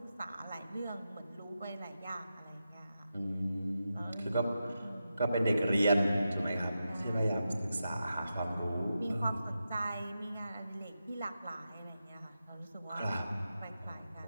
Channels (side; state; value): both; inverted; correlation -0.89